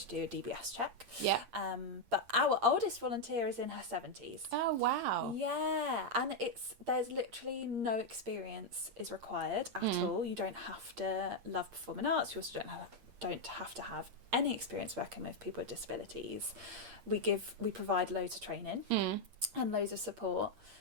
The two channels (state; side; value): late; left; 8.6 ms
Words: do a DBS check. Yeah. But our oldest volunteer is in her 70s. Oh, wow. Yeah. And there's literally no experience is required at all. You don't have to love performing arts. You also don't have to have any experience working with people with disabilities. We provide loads of training and loads of support.